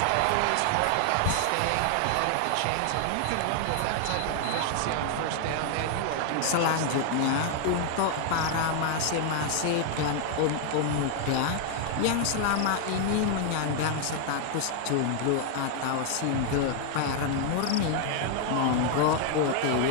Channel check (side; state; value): both; different; correlation 0.00